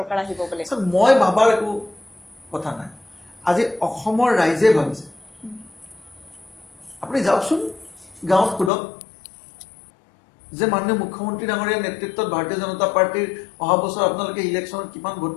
আহিব বুলি মই ভাবাৰ একো কথা নাই আজি অসমৰ ৰাইজে ভাবিছে আপুনি যাওকচোন গাঁৱত সোধক যে মাননীয় মুখ্যমন্ত্ৰী ডাঙৰীয়াৰ নেতৃত্বত ভাৰতীয় জনতা পাৰ্টিৰ অহা বছৰ আপোনালোকে ইলেকশ্যনত কিমান ভোট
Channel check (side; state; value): right; drops out; at 8.7 s